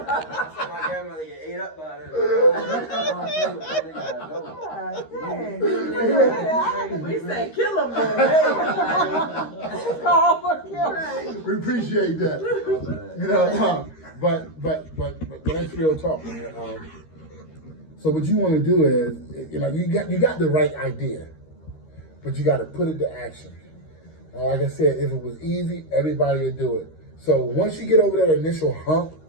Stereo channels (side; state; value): right; late; 13 ms